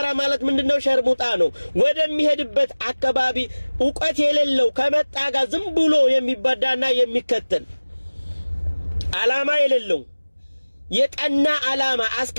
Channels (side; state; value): both; inverted; correlation -1.00